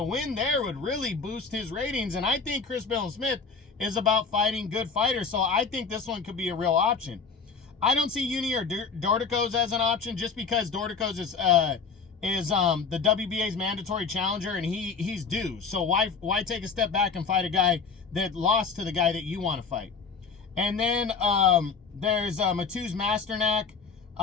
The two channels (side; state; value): right; quieter; 5.2 dB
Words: win there would really boost his ratings. And I think Chris Billiam-Smith is about fighting good fighters. So I think this one could be a real option. I don't see Uni or Dorticos as an option just because Dorticos is the WBA's mandatory challenger and he's due. So why take a step back and fight a guy that lost to the guy that you want to fight? And then there's Mateusz Masternak.